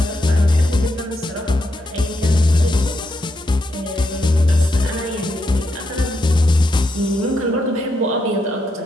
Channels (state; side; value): normal; both; correlation 0.81